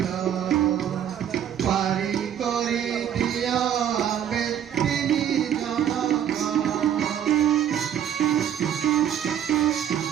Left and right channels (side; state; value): left; quieter; 9.7 dB